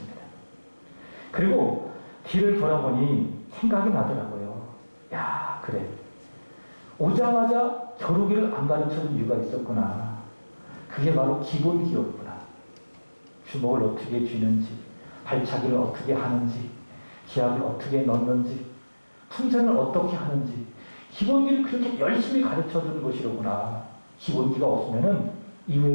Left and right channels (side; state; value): both; inverted; correlation -1.00